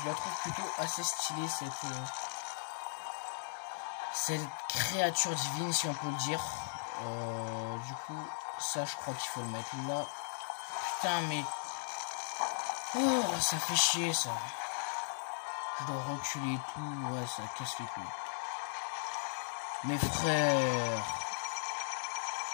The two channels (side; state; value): right; silent; 53 dB below the other